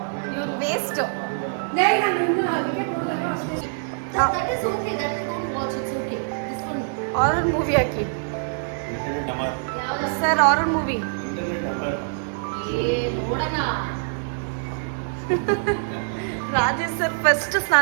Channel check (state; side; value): silent; left; 62 dB below the other